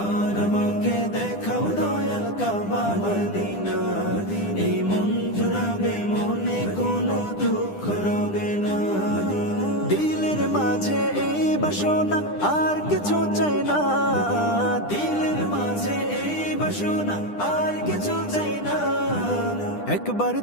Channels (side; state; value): right; late; 10 ms